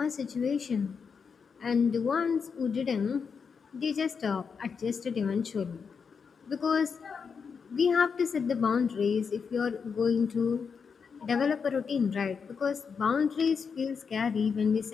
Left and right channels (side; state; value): right; quieter; 5.9 dB